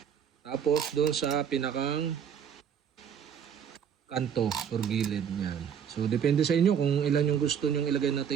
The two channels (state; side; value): quieter; left; 8.1 dB